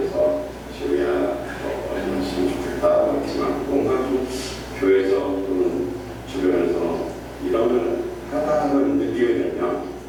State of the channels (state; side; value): identical; both; correlation 1.00